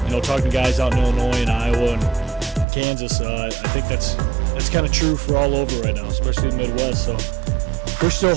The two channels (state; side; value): drops out; left; at 2.7 s